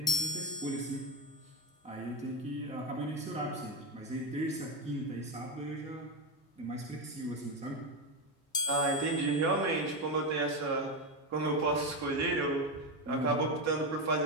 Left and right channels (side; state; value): both; normal; correlation 0.11